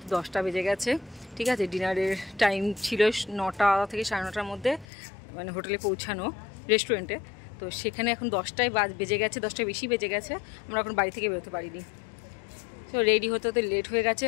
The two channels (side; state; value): right; drops out; at 4.9 s